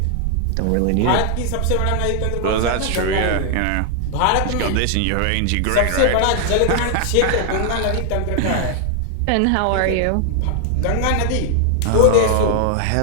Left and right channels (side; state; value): both; different; correlation 0.00